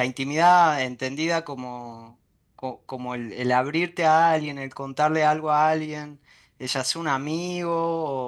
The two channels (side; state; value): both; identical; correlation 1.00